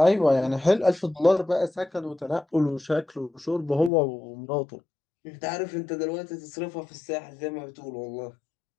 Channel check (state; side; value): drops out; right; at 3.9 s